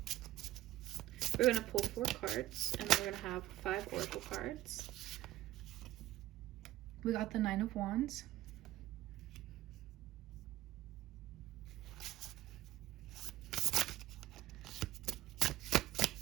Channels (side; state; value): left; quieter; 15.3 dB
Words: We're going to pull 4 cards, and then we're going to have 5 oracle cards. We got the 9 of Wands.